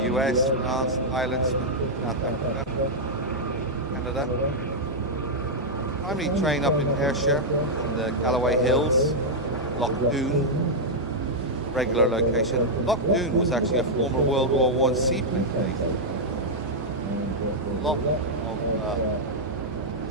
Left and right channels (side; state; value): both; normal; correlation -0.05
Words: US, France, Ireland, South Africa, Canada. Primarily train up in Ayrshire, in the Galloway Hills, Loch Doon, regular location. Loch Doon was actually a former World War I seaplane base. A lot of